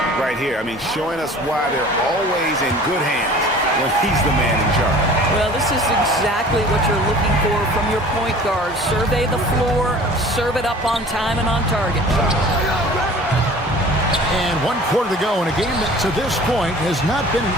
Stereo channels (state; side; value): normal; both; correlation 0.45